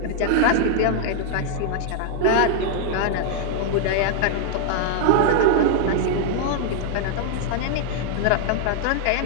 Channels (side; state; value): both; different; correlation -0.01